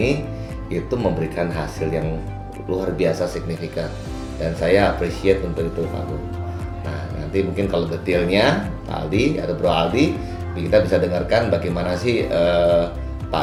itu memberikan hasil yang luar biasa signifikan, dan saya appreciate untuk itu Pak Go. Nah nanti mungkin kalau detailnya Pak Aldi atau Bro Aldi kita bisa dengarkan bagaimana sih Pak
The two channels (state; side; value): identical; both; correlation 1.00